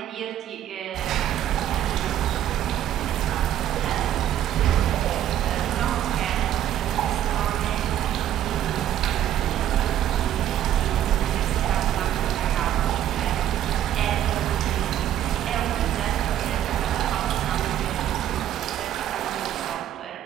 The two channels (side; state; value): left; quieter; 11.5 dB